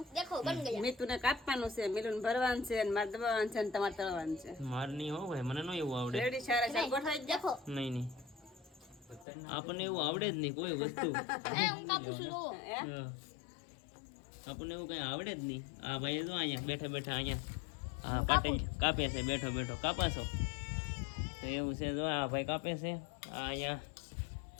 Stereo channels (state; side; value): drops out; right; at 9.2 s